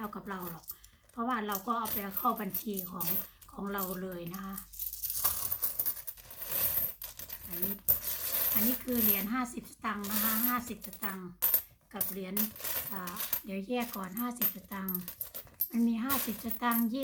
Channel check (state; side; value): identical; both; correlation 1.00